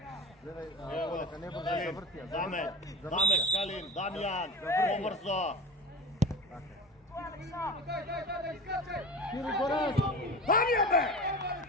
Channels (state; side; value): normal; both; correlation 0.31